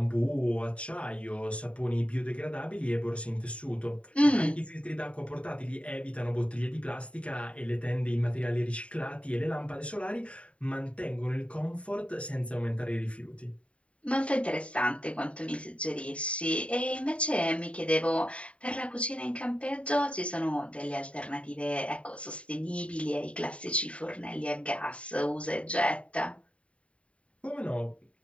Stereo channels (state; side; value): late; right; 0.063 ms